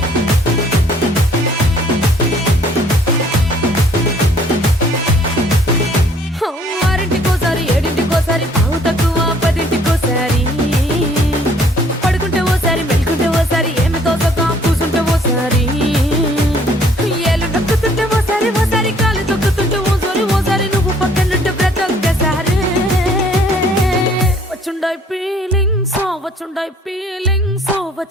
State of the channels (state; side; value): normal; both; correlation 0.59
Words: ఆరింటికోసారి ఏడింటికోసారి పావు తక్కువ పదింటికోసారి పడుకుంటే ఓసారి మెలుకుంటే ఓసారి ఏమి తోసక కూసుంటే ఓసారి ఏలు నొక్కుతుంటే ఓసారి కాలు తొక్కుతుంటే ఓసారి నువ్వు పక్కనుంటే బ్రతొక్కసారి వచ్చుండాయి ఫీలింగ్స్